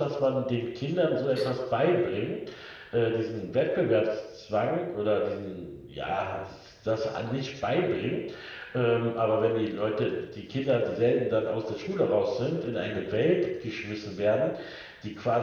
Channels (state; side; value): identical; both; correlation 1.00